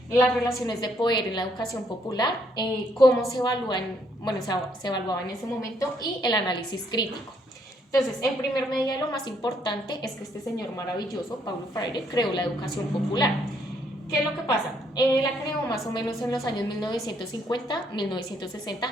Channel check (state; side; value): normal; both; correlation 0.70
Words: las relaciones de poder en la educación popular, cómo se evalúan, bueno, se evaluaba en ese momento y el análisis crítico. Entonces, en primer medida, lo más importante es que este señor maravilloso, Paulo Freire, creó la educación popular. ¿Qué es lo que pasa? La creó más o menos en los años